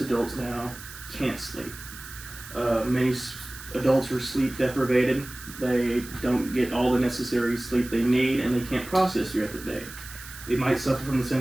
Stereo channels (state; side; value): noise; right; hiss, 15 dB below the sound